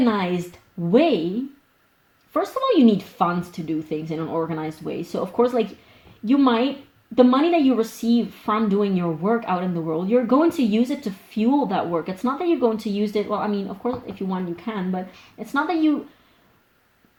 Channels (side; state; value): both; identical; correlation 1.00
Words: way, first of all, you need funds to do things in an organized way. So of course, like, you might, the money that you receive from doing your work out in the world, you're going to use it to fuel that work. It's not that you're going to use it, well, I mean, of course, if you want, you can, but it's not that you